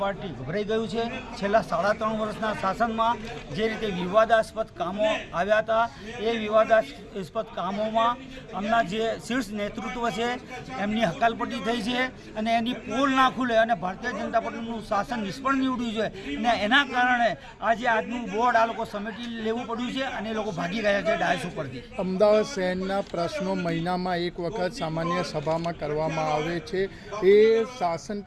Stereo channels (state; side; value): identical; both; correlation 1.00